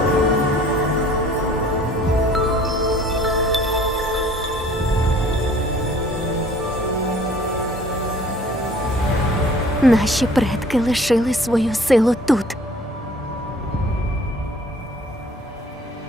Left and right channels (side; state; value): both; normal; correlation 0.52